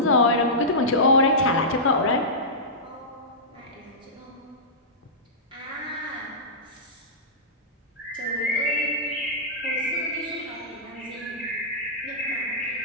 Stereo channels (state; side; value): normal; both; correlation -0.15